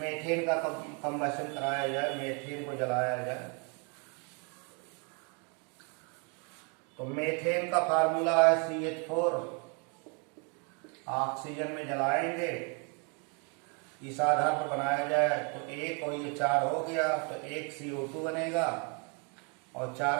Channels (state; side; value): quieter; left; 35.6 dB